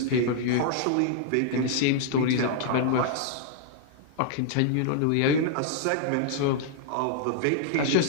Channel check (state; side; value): different; both; correlation -0.01